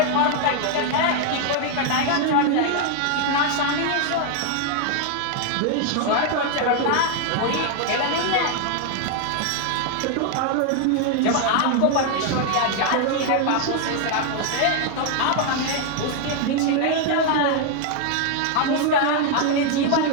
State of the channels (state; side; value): different; both; correlation 0.00